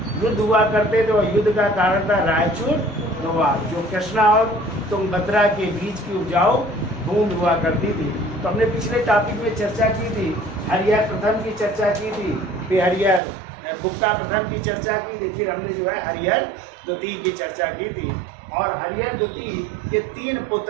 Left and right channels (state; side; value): drops out; left; at 13.2 s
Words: युद्ध हुआ करते थे, और युद्ध का कारण था रायचूर दोवाब, जो कृष्णा और तुंगभद्रा के बीच की उपजाऊ भूमि हुआ करती थी। तो हमने पिछले टॉपिक में चर्चा की थी, हरिहर प्रथम की चर्चा की थी, फिर हरिहर बुक्का प्रथम की चर्चा की थी, फिर हमने जो है हरिहर द्वितीय की चर्चा की थी। और हरिहर द्वितीय के 3